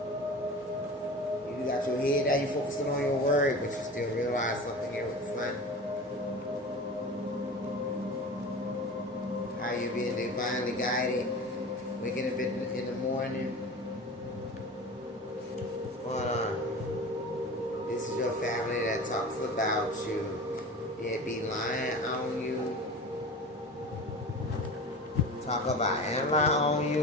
You got your head down, you focusing on your word, but you still realize something here with the sun. How you being divinely guided, waking up in the morning. This is your family that talks about you. They be lying on you. Talk about and lie on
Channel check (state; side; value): normal; both; correlation 0.34